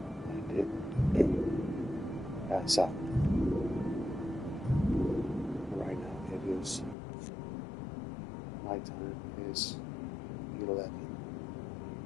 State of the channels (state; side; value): drops out; right; at 7.0 s